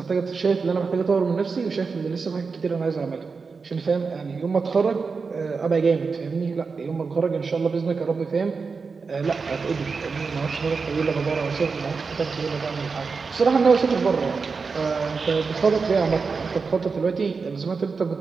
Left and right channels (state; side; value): quieter; left; 4.8 dB